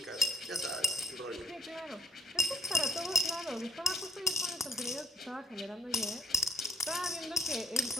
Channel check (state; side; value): normal; both; correlation 0.60